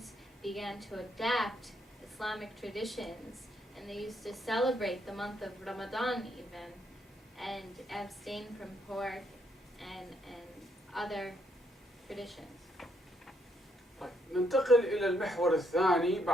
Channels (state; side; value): normal; both; correlation 0.74